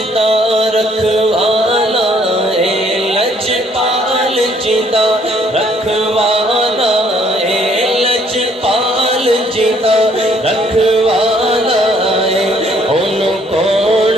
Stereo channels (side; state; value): both; normal; correlation 0.64